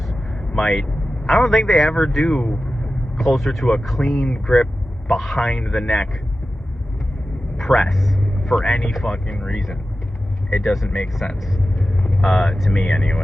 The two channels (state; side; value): normal; both; correlation 0.94